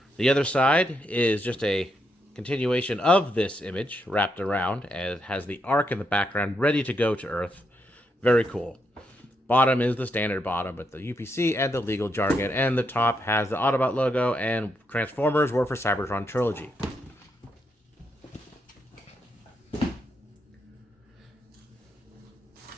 The other side is just a continuation of this image wrapped around, and it has the Ark in the background ready to go to Earth. Very cool. Bottom is the standard bottom with the UPC and the legal jargon, and the top has the Autobot logo and Transformers War for Cybertron trilogy.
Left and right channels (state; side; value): normal; both; correlation 0.80